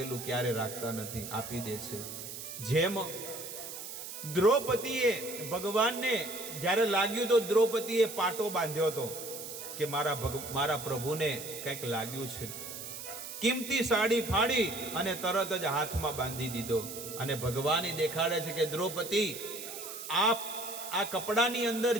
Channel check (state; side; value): noise; right; hiss, 9 dB below the sound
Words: ક્યારે રાખતા નથી, આપી દે છે. જેમ દ્રૌપદીએ ભગવાનને જ્યારે લાગ્યું તો દ્રૌપદીએ પાટો બાંધ્યો હતો કે મારા પ્રભુને કંઈક લાગ્યું છે. કિંમતી સાડી ફાડી અને તરત જ હાથમાં બાંધી દીધો. અને ભગવાન દેખાડે છે કે દ્રૌપદી, આ કપડાની અંદર